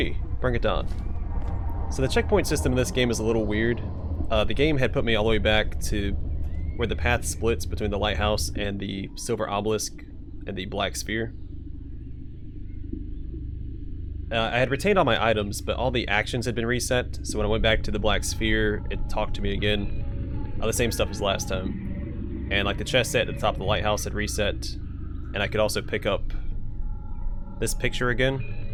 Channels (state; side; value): identical; both; correlation 1.00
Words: Bring It Down. So the checkpoint system in this game is a little weird. The game had put me all the way back to where the path splits between the lighthouse and the silver obelisk and the black sphere. I had retained all my items, but all the actions had been reset, so when I went back to the black sphere, it talked to me again. The same stuff as last time. And like the chest set at the top of the lighthouse had reset, and I could also pick up this picture again.